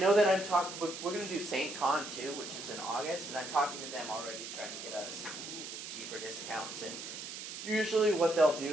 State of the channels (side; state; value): right; noise; hiss, 9 dB below the sound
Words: that I'm talking. We're gonna do St. Con too, which is in August, and I'm talking to them already, trying to get us cheaper discounts. And usually, what they'll